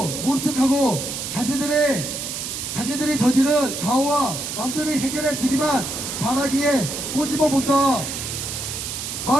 모른 척하고 자신들이 저지른 가오와 남들이 해결해 주기만 바라기에 꼬집어 본다.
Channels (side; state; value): right; noise; hiss, 5 dB below the sound